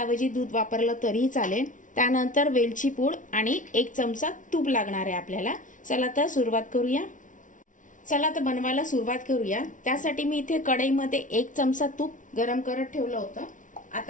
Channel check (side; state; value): right; late; 0.37 ms